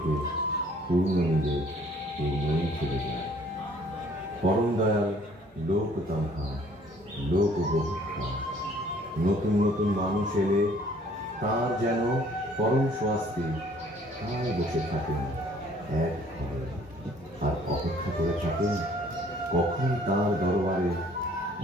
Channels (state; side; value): normal; both; correlation 0.57